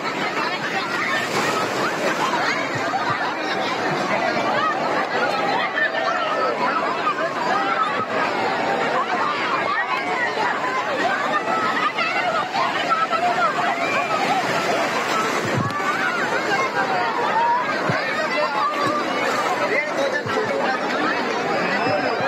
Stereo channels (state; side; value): identical; both; correlation 1.00